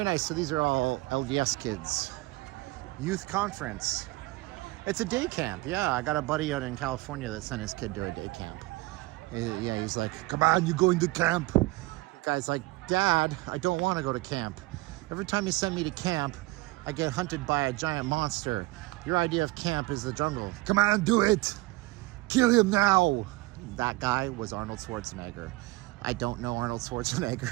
nice. So these are all LDS kids. Youth conference. It's a day camp. Yeah, I got a buddy out in California that sent his kid to a day camp. Yeah, he's like, come on, you're going to camp. The guy's like, Dad, I don't want to go to camp. Every time you send me to camp, I get hunted by a giant monster. Your idea of camp is the jungle. Come on, do it. Kill him now. That guy was Arnold Schwarzenegger. I don't know Arnold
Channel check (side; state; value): left; quieter; 20.9 dB